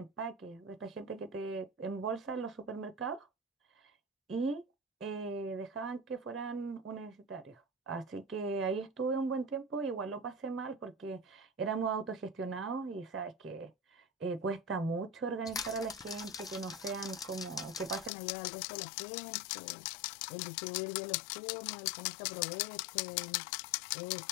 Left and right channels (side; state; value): right; drops out; at 18.1 s